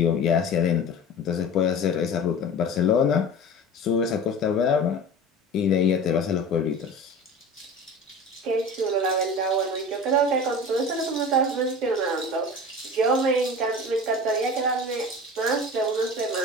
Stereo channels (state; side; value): normal; both; correlation 0.35